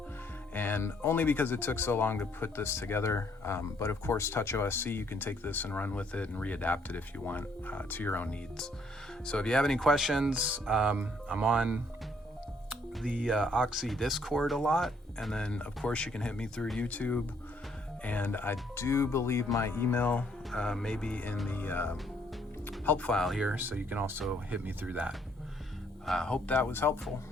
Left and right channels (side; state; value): both; normal; correlation 0.67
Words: And only because it took so long to put this together, but of course TouchOSC, you can take this and run with it and readapt it if you want to your own needs. So if you have any questions, I'm on the Oxi Discord a lot, and then of course you can hit me through YouTube, and I do believe my email may be in the help file here, so you can also hit me through that. Hope that was helpful,